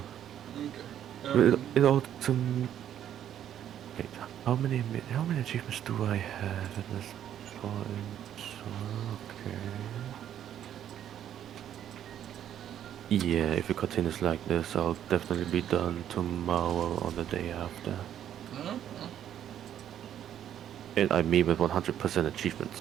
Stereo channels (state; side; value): quieter; left; 10.4 dB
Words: Okay. It all to... Wait, how many achievements do I have at this point? Okay. Yeah, if it continues like this, I'll definitely be done tomorrow or the day after. And I mean with 100%